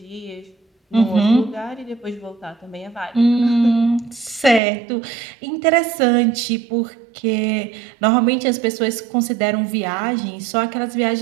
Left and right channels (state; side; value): drops out; left; at 4.6 s